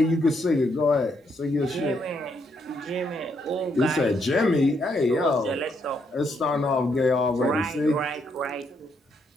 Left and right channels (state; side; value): normal; both; correlation 0.75